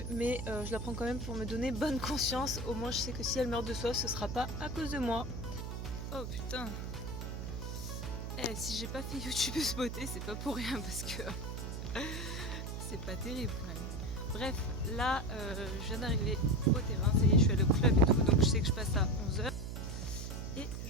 mais je la prends quand même pour me donner bonne conscience. Au moins je sais que si elle meurt de soif ce sera pas à cause de moi. Oh putain. Si j'ai pas fait youtubeuse beauté, c'est pas pour rien parce que c'est pas terrible quand même. Bref, là je viens d'arriver au terrain, ça y est, je suis allée au club et tout, donc je sais que je passe à 11h. Et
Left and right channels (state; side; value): noise; right; hum, 6 dB below the sound